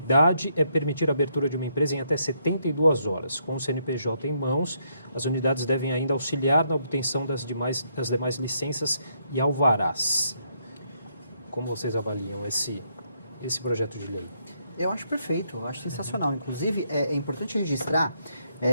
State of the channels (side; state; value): both; inverted; correlation -0.75